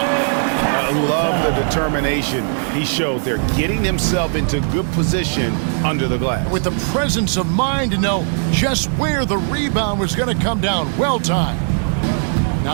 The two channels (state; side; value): silent; left; digital silence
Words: I love the determination he showed there, getting himself into good position under the glass. With the presence of mind to know just where the rebound was going to come down. Well timed.